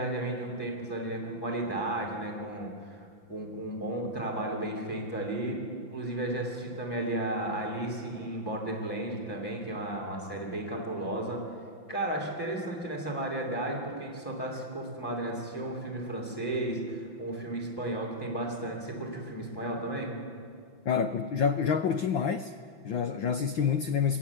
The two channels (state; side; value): late; right; 5.9 ms